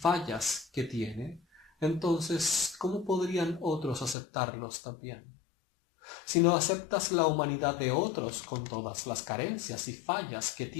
que tiene, entonces, ¿cómo podrían otros aceptarlos también? Si no aceptas la humanidad de otros con todas las carencias y fallas que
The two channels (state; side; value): drops out; right; at 4.2 s